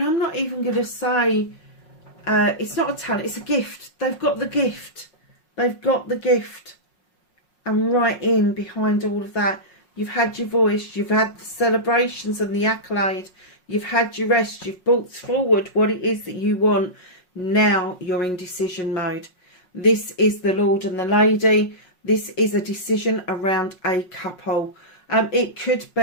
I'm not even going to say it's not a talent, it's a gift. They've got the gift. They've got the gift. And right in behind all of that, you've had your voice, you've had the celebrations and the accolade, you've had your rest, you've brought forward what it is that you want. Now you're in decision mode. This is the Lord and the Lady. This is a decision around a couple. It could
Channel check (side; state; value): right; late; 5.5 ms